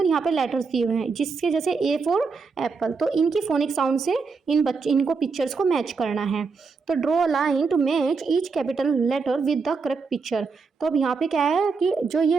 यहाँ पे लेटर्स दिए हुए हैं, जिसके जैसे A फॉर एप्पल। तो इनकी फोनिक साउंड से इनको पिक्चर्स को मैच करना है। तो draw a line to match each capital letter with the correct picture. तो अब यहाँ पे क्या है कि जो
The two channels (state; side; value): quieter; left; 4.8 dB